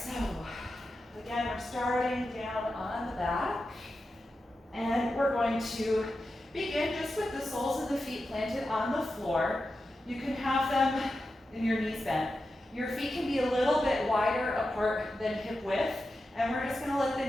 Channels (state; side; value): normal; both; correlation 0.90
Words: again, we're starting down on the back, and we're going to begin just with the soles of the feet planted on the floor. You can have them in your knees bent. Your feet can be a little bit wider apart than hip width, and we're just gonna let